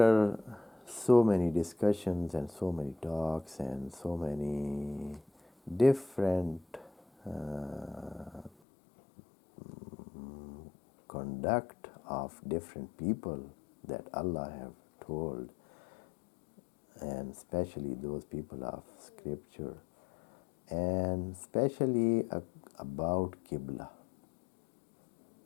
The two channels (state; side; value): drops out; right; at 8.5 s